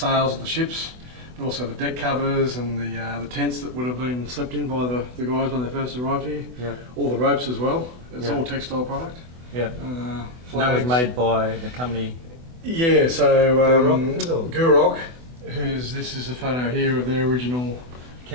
of the ships, but also the deck covers and the tents that would have been slept in by the guys when they first arrived here. Yeah. All the ropes as well. It's Yeah. all textile product. Yeah. Flags. And that was made by the company. Yeah, so Gurok, is it, or? Gurok, this is a photo here of their original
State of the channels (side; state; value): left; late; 24 ms